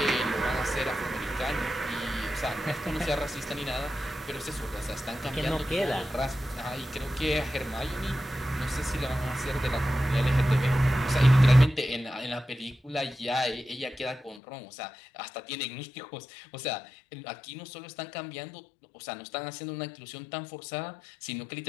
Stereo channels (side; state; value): right; drops out; at 14.4 s